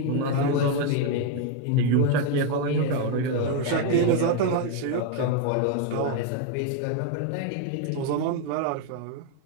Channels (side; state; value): both; different; correlation 0.01